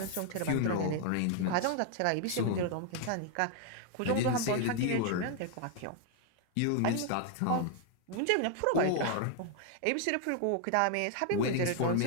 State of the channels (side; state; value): both; different; correlation 0.00